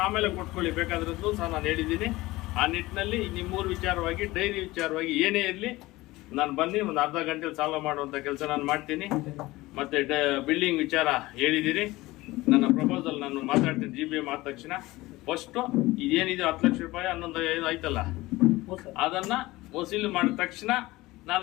ಆಮೇಲೆ ಕೊಟ್ಕೊಳ್ಳಿ ಬೇಕಾದ್ರದ್ದು ಸಹ ನಾನು ಹೇಳಿದ್ದೀನಿ. ಆ ನಿಟ್ಟಿನಲ್ಲಿ ನಿಮ್ಮೂರು ವಿಚಾರವಾಗಿ, ಡೈರಿ ವಿಚಾರವಾಗಿ ಏನೇ ಇರಲಿ ನಾನು ಬನ್ನಿ, ಒಂದು ಅರ್ಧ ಗಂಟೆಲಿ ಸಾಲ್ವ್ ಮಾಡುವಂಥ ಕೆಲಸ ನಾನು ಮಾಡ್ತೀನಿ. ಮತ್ತು ಬಿಲ್ಡಿಂಗ್ ವಿಚಾರ ಹೇಳಿದ್ದೀರಿ. ನನ್ನ ಪ್ರಪೋಸಲ್ ನಾನು ಮಾತಾಡ್ತೀನಿ. GBM ಆದ ತಕ್ಷಣ ಫಸ್ಟು ಇದೇನಿದೆ 10 ಲಕ್ಷ ರೂಪಾಯಿ 11 ಆಯ್ತಲ್ಲ, ಅದನ್ನು ವಸೂಲಿ ಮಾಡಿದ ತಕ್ಷಣ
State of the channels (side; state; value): right; quieter; 19.3 dB